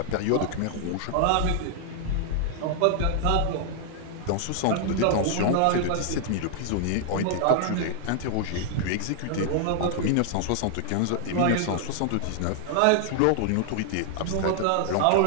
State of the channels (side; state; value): both; different; correlation 0.00